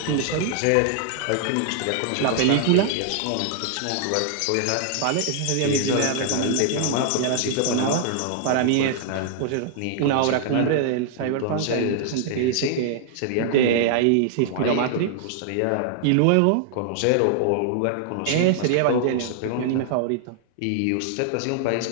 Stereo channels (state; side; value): different; both; correlation 0.00